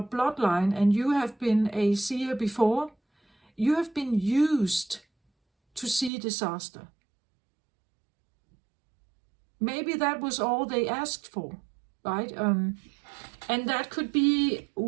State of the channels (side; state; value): left; drops out; at 6.1 s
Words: bloodline and you have been a seer before, you have been used to see disaster. Maybe that was all they asked for, right? And that could be